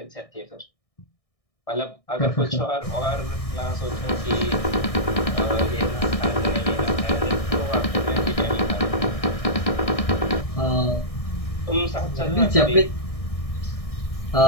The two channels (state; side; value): late; right; 1.6 ms